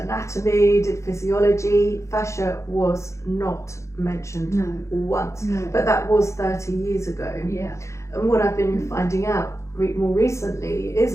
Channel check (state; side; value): late; right; 0.14 ms